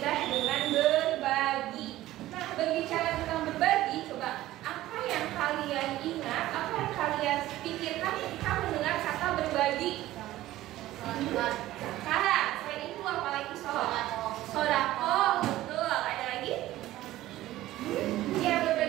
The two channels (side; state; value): left; quieter; 15.5 dB